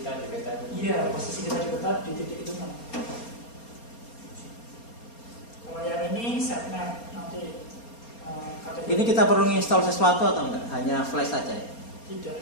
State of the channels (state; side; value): late; right; 4.3 ms